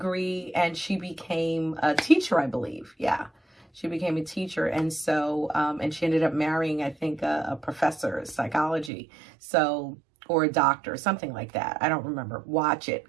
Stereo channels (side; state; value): left; drops out; at 8.9 s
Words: and she became a teacher, I believe. Yeah. She became a teacher. And so, and she ended up marrying, I think, a professor of psychology. So, or a doctor, something like that. I don't remember. Watch it.